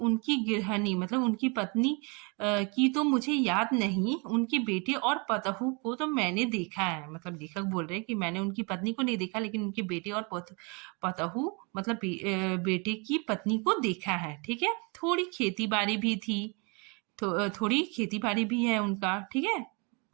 गृहिणी मतलब उनकी पत्नी की तो मुझे याद नहीं, उनके बेटे और पतहू को तो मैंने देखा है। मतलब लेखक बोल रहे हैं कि मैंने उनकी पत्नी को नहीं देखा, लेकिन उनके बेटे और पतहू मतलब बेटे की पत्नी को देखा है। ठीक है, थोड़ी खेती बाड़ी भी थी, तो थोड़ी खेती बाड़ी भी है उनका। ठीक है,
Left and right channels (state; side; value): quieter; left; 31.8 dB